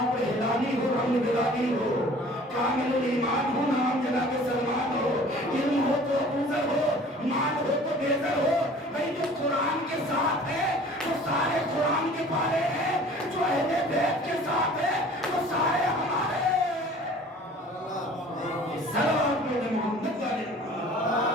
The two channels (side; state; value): both; normal; correlation 0.48